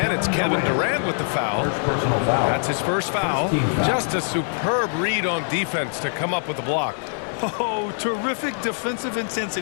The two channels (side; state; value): right; silent; 63 dB below the other